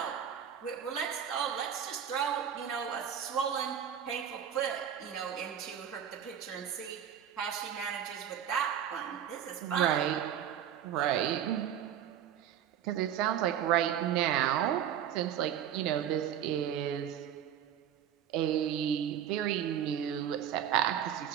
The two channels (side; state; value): left; quieter; 9.6 dB